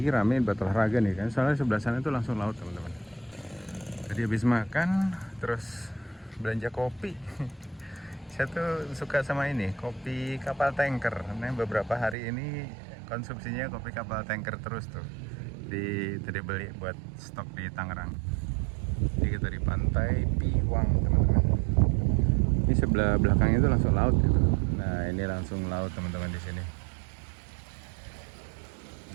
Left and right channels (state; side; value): drops out; left; at 12.2 s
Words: rame buat olahraga nih kan. Soalnya sebelah sana itu langsung laut teman-teman. Tadi habis makan, terus belanja kopi. Saya tuh suka sama ini, kopi kapal tanker. Nah, beberapa hari ini konsumsinya kopi kapal tanker terus tuh. Tadi beli buat stok di Tangerang. Jadi kita di pantai Piwang teman-teman. Ini sebelah belakangnya itu langsung laut gitu. Nah ini langsung laut teman-teman di sini.